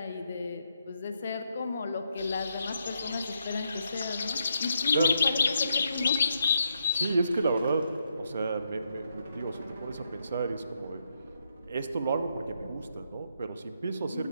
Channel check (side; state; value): both; inverted; correlation -0.79